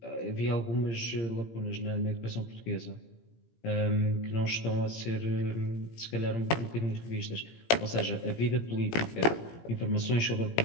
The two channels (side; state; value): right; late; 17 ms